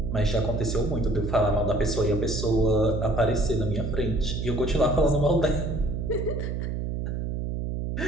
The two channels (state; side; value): noise; right; hum, 2 dB below the sound